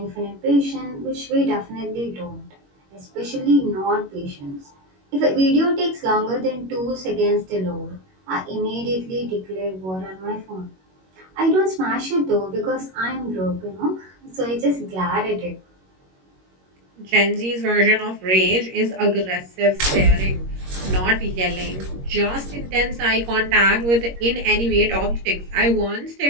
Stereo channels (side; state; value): left; late; 21 ms